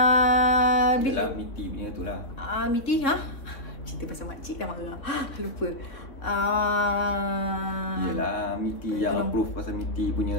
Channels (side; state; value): right; late; 3.3 ms